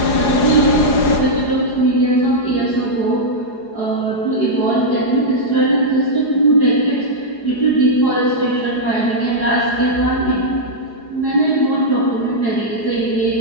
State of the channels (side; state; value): right; late; 4.8 ms